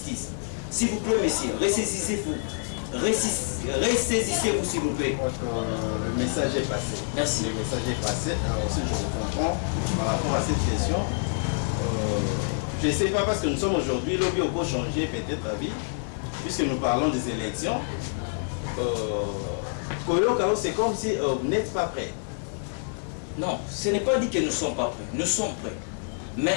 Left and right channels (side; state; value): right; silent; digital silence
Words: S'il vous plaît, messieurs, ressaisissez-vous. Ressaisissez-vous, s'il vous plaît. Le message est passé. Merci. Le message est passé. Alors aussi, je vous comprends par rapport à cette question. Je ne sais pas, parce que nous sommes aujourd'hui, lobby au beau changer peut-être la vie, puisque nous parlons des élections. C'est comme si vous n'êtes pas prêts. Non, ce n'est pas dit que nous ne sommes pas prêts. Nous sommes prêts.